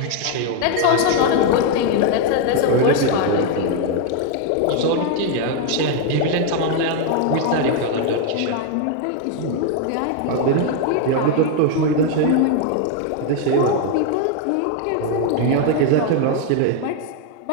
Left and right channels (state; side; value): different; both; correlation 0.01